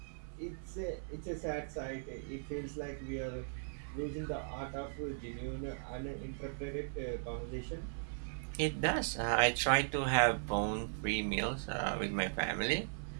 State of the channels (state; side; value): silent; left; 52 dB below the other